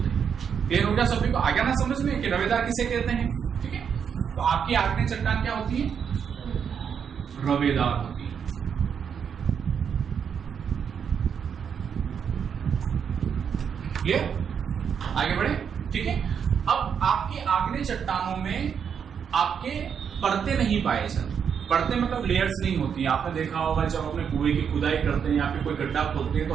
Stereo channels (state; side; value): quieter; left; 7.3 dB